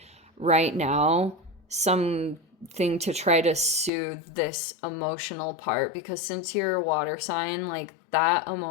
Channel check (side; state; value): right; drops out; at 3.9 s